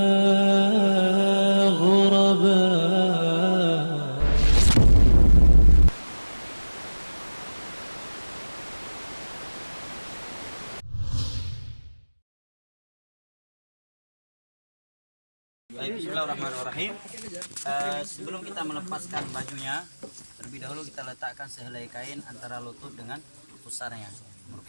غربا. Bismillahirrahmanirrahim. Sebelum kita melepaskan bajunya, terlebih dahulu kita letakkan sehelai kain antara lutut dengan pusarnya,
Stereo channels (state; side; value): inverted; both; correlation -1.00